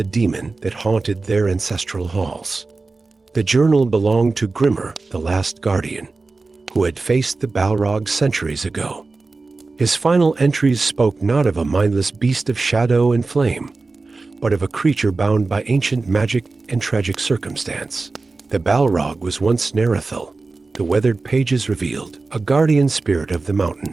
demon that haunted their ancestral halls. The journal belonged to Grimmer, the last guardian, who had faced the Balrogs centuries ago. His final entries spoke not of a mindless beast of shadow and flame, but of a creature bound by ancient magic and tragic circumstance. The Balrog was once Narethil, the weathered pages revealed, a guardian spirit of the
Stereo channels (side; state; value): left; quieter; 3.7 dB